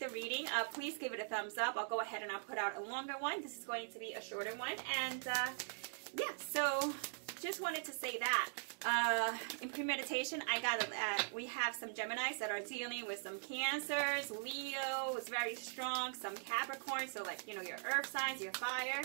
reading, please give it a thumbs up. I'll go ahead and I'll put out a longer one. This is going to be a shorter one, and yeah, so just wanted to say that. In premeditation, I got we have some Geminis that are dealing with some Cancers, Leo is very strong, some Capricorn, so like, you know, your earth signs, your fire,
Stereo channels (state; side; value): silent; left; digital silence